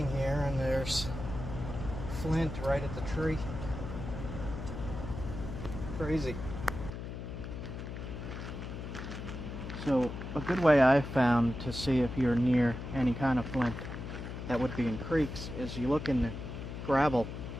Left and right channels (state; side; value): noise; left; hum, 8 dB below the sound